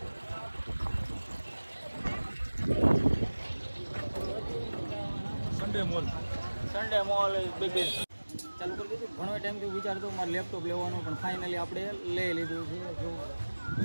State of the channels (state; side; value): inverted; both; correlation -1.00